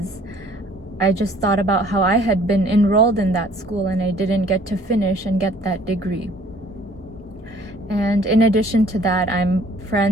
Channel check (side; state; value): both; normal; correlation 0.56